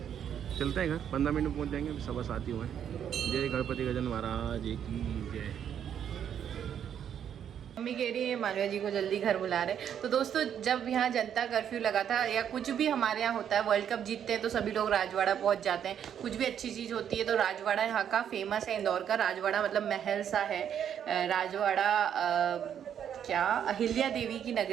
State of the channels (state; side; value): quieter; left; 9.0 dB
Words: चलते हैं घर, 15 मिनट में पहुँच जाएंगे। 7:15 ही हुए हैं। जय गणपति गजानन महाराज की जय। मम्मी कह रही है मालविया जी को जल्दी घर बुला रहे। तो दोस्तों जब यहाँ जनता कर्फ्यू लगा था, या कुछ भी हमारे यहाँ होता है, वर्ल्ड कप जीतते हैं तो सभी लोग राजवाड़ा पहुँच जाते हैं। कुछ भी अच्छी चीज़ होती है तो राजवाड़ा यहाँ का फेमस है। इंदौर का राजवाड़ा मतलब महल सा है। राजवाड़ा क्या अहिल्या देवी की